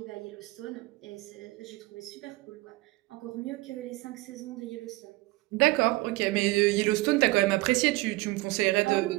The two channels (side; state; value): left; quieter; 21.3 dB